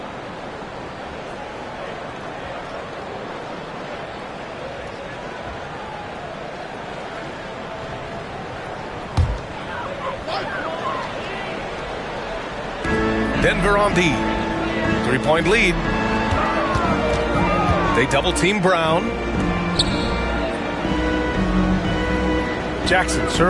Denver on D. 3-point lead. They double team Brown. Jackson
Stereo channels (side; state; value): both; identical; correlation 1.00